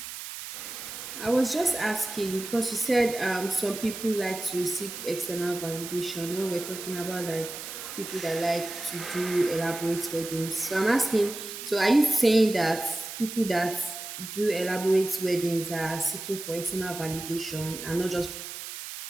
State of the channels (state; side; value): noise; right; hiss, 9 dB below the sound